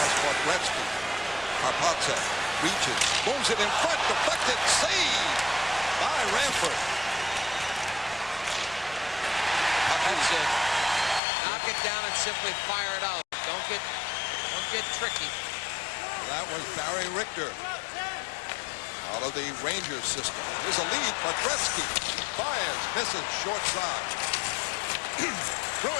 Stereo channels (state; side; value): drops out; right; at 11.2 s